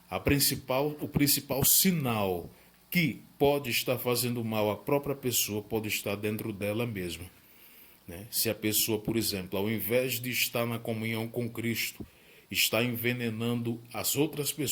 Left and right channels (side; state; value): both; identical; correlation 1.00